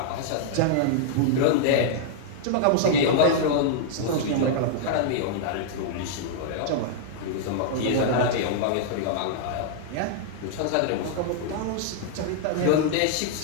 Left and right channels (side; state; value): both; different; correlation -0.01